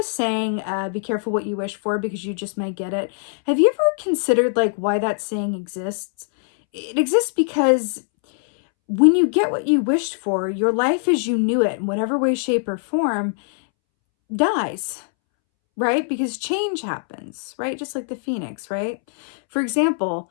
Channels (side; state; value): right; silent; 64 dB below the other